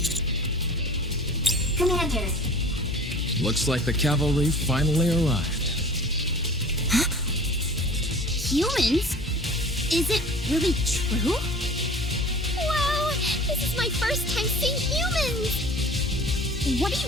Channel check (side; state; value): both; normal; correlation 0.42